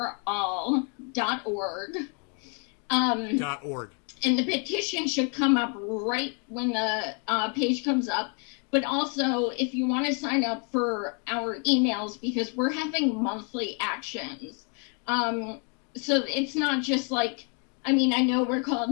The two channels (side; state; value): right; quieter; 38.4 dB